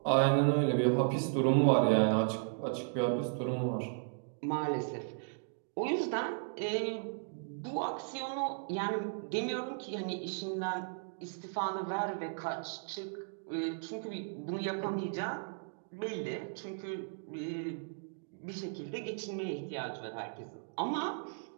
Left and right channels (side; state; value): left; silent; digital silence